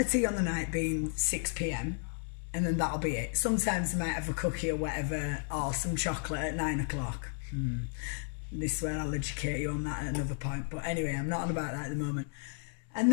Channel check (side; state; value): right; silent; 56 dB below the other